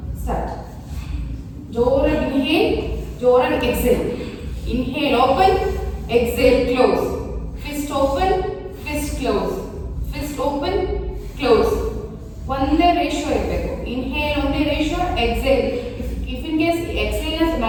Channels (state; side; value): identical; both; correlation 1.00